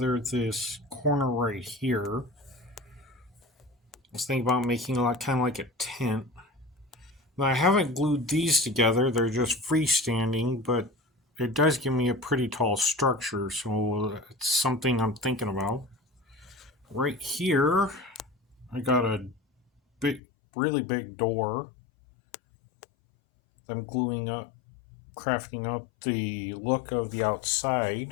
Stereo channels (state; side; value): drops out; right; at 20.2 s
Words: this corner right here. I was thinking about making it kind of like a tent. Now, I haven't glued these together, they're just freestanding, but it does give me a pretty tall structure, so it's something I'm thinking about. Right here, I got a really big door that I'm gluing up, crafting up the look of the